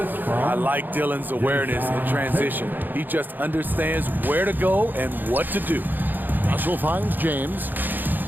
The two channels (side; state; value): left; late; 0.089 ms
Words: like Dillon's awareness in transition. He just understands where to go and what to do. Russell finds James.